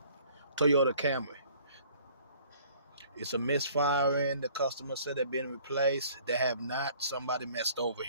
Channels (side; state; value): both; inverted; correlation -0.55